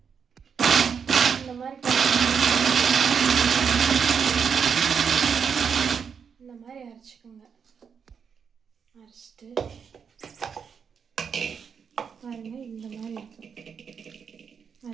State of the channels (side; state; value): left; quieter; 6.7 dB